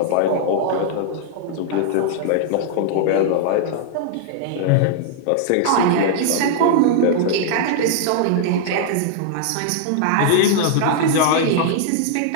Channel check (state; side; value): different; both; correlation -0.01